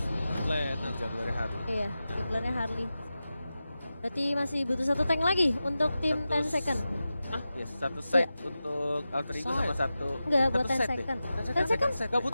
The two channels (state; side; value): inverted; both; correlation -0.93